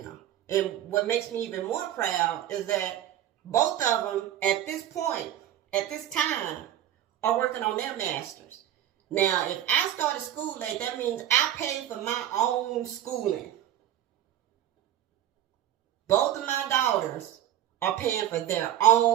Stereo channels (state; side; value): quieter; left; 12.0 dB